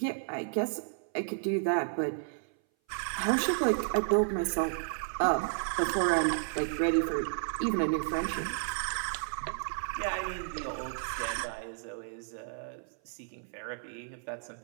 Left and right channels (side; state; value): left; silent; 56 dB below the other